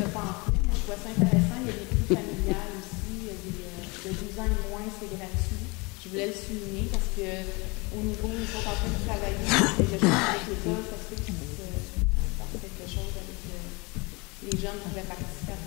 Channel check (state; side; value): quieter; right; 27.4 dB